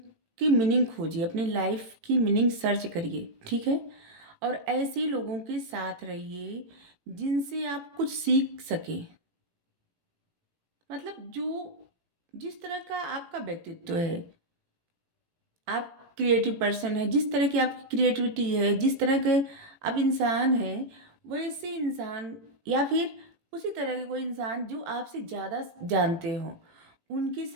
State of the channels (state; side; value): late; left; 18 ms